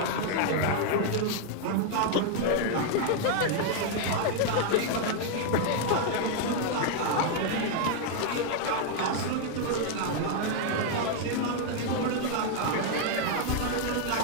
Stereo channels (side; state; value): both; different; correlation 0.00